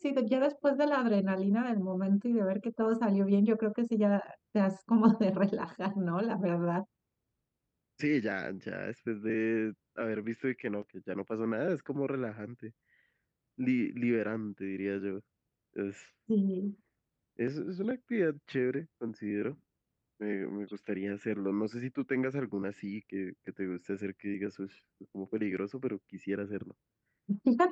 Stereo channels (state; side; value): identical; both; correlation 1.00